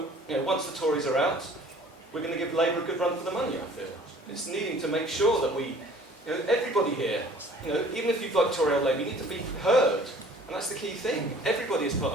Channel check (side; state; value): both; normal; correlation 0.51